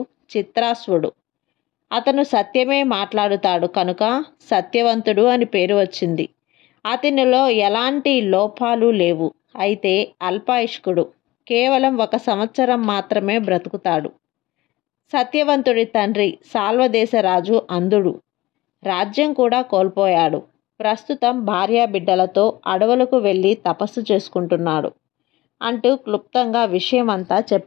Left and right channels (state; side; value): quieter; right; 18.6 dB